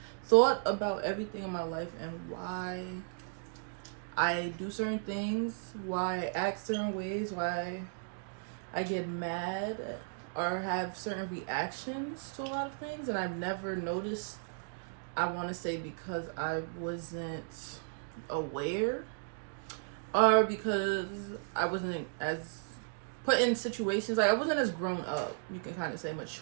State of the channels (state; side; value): silent; left; digital silence